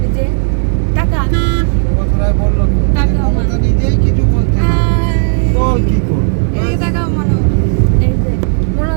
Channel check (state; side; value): silent; left; digital silence